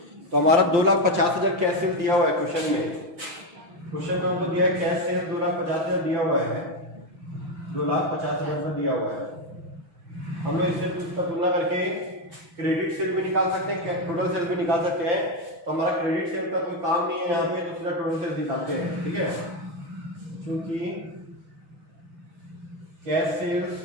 तो हमारा 2,50,000 कैश सेल दिया हुआ है क्वेश्चन में, क्वेश्चन में हमको दिया है कैश सेल 2,50,000 दिया हुआ है, 2,50,000 में दिया हुआ है। हम लोग इससे उसका तुलना करके क्रेडिट सेल भी निकाल सकते हैं, टोटल सेल भी निकाल सकते हैं। तो हमारा क्रेडिट सेल का कोई काम नहीं है यहाँ पे, तो सीधा टोटल सेल निकालते हैं, ठीक है। क्योंकि कैश सेल्स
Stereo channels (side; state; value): left; late; 6.2 ms